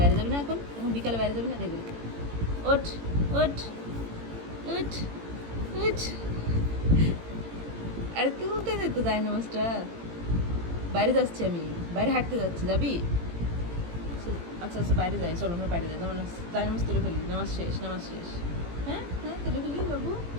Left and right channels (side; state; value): left; late; 18 ms